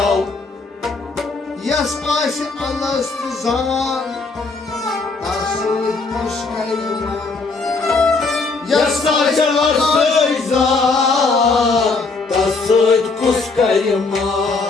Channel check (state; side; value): quieter; right; 4.0 dB